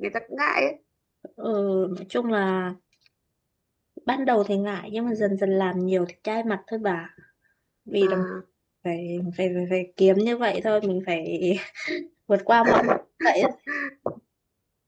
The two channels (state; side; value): identical; both; correlation 1.00